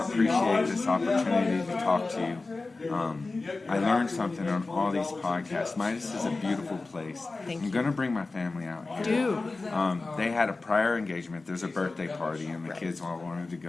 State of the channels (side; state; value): right; quieter; 3.5 dB